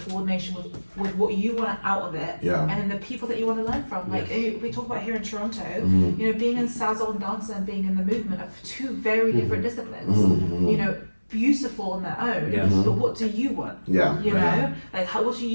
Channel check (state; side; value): inverted; both; correlation -1.00